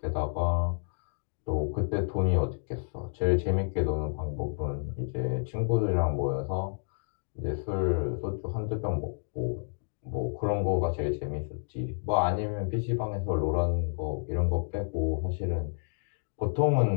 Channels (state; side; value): silent; right; digital silence